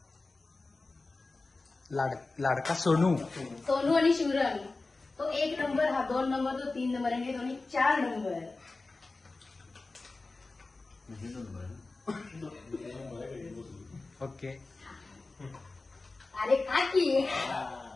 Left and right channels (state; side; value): quieter; right; 3.5 dB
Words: लाडका सोनू. सोनू आणि शिवरंग. तो 1 नंबर, हा 2 नंबर, तो 3 नंबर, आणि हे दोन्ही 4 नंबर. ओके. अरे काकी